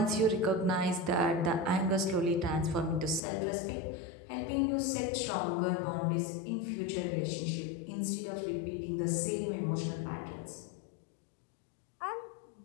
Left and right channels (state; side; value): drops out; right; at 3.2 s